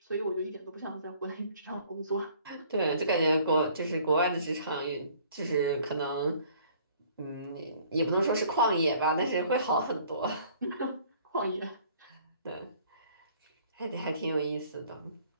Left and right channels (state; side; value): inverted; both; correlation -0.56